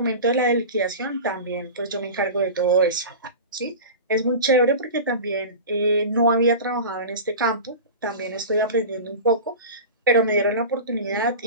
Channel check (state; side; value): inverted; both; correlation -0.31